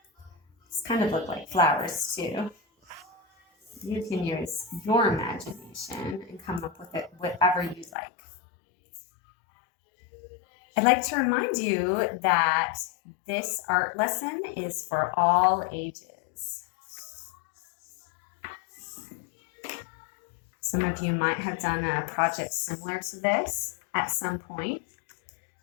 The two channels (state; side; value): drops out; right; at 7.9 s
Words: These kind of look like flowers too. You can use your imagination and come up with it whatever you like. I'd like to remind you that this art lesson is for all ages. Some of you might have done a project similar to this at some point.